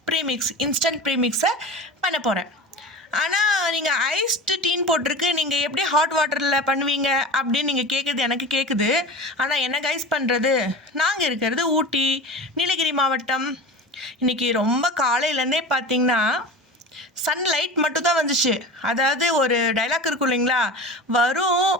premix, instant ப்ரீமிக்ஸை பண்ண போகிறேன். ஆனால் நீங்கள் ஐஸ்டு டீன்னு போட்டிருக்கு, நீங்கள் எப்படி ஹாட் வாட்டரில் பண்ணுவீங்க அப்படின்னு நீங்கள் கேட்குறது எனக்கு கேட்குது. ஆனால் என்ன கைஸ் பண்ணுறது, நாங்கள் இருக்கிறது ஊட்டி, நீலகிரி மாவட்டம். இன்றைக்கி ரொம்ப காலையிலேருந்தே பார்த்திங்கன்னா சன்லைட் மட்டும் தான் வந்துச்சு. அதாவது ஒரு டைலாக் இருக்கும் இல்லைங்களா, வரும்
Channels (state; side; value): normal; both; correlation 0.32